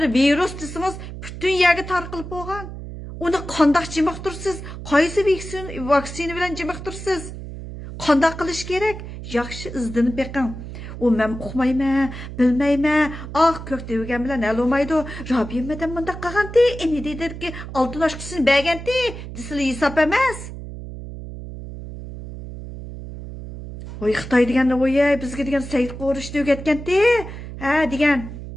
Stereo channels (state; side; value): noise; right; hum, 10 dB below the sound